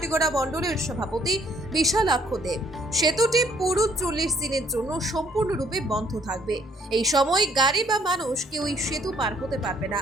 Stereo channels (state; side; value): normal; both; correlation 0.64